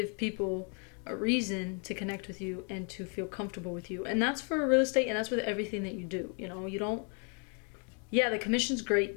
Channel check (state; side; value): quieter; right; 39.0 dB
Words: people a reason to connect with you and to feel comfortable with you. And that's for real estate, and that's with everything that you do. You know, you don't, yeah, the commission's